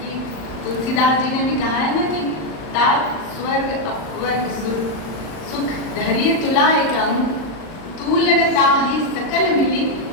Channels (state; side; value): late; right; 39 ms